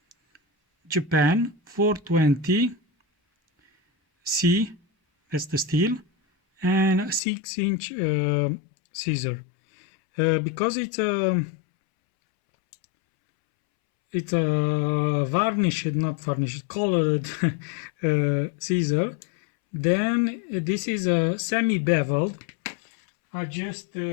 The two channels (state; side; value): drops out; right; at 7.2 s